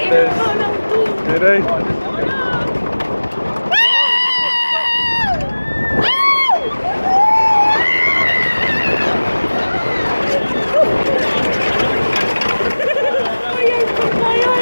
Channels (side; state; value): both; inverted; correlation -1.00